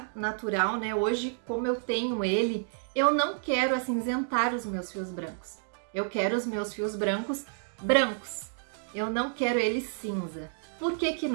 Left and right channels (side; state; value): left; silent; digital silence